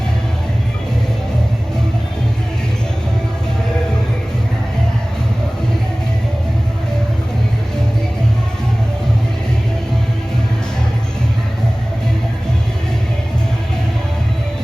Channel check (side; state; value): both; normal; correlation 0.98